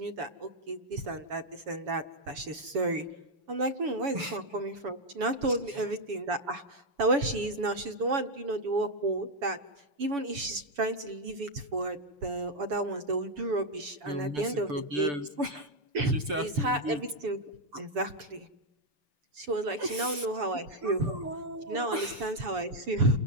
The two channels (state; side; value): late; left; 7.1 ms